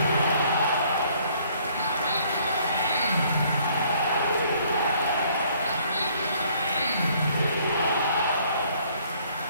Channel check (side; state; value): both; inverted; correlation -0.61